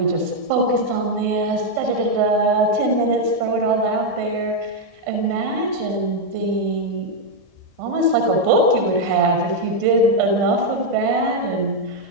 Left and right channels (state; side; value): late; left; 1.7 ms